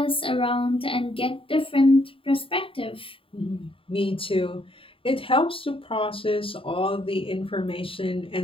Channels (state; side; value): late; right; 0.26 ms